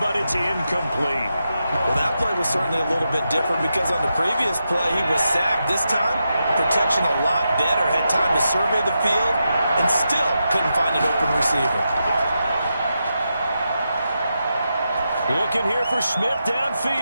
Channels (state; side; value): inverted; both; correlation -0.87